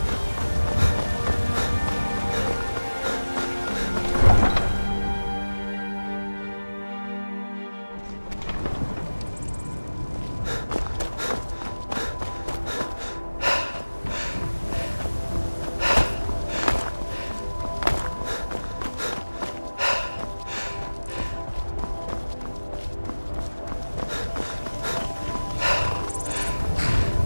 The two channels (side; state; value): both; inverted; correlation -1.00